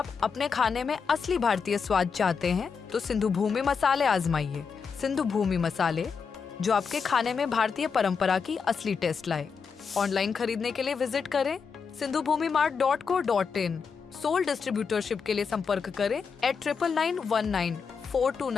अपने खाने में असली भारतीय स्वाद चाहते हैं तो सिंधु भूमि मसाले आजमाइए। सिंधु भूमि मसाले जो आपके खाने में भारतीय परंपरा की असली टेस्ट लाए। ऑनलाइन खरीदने के लिए विजिट करें sindhubhumimart.co.in। सोल डिस्ट्रीब्यूटरशिप के लिए संपर्क करें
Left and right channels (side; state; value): right; quieter; 5.8 dB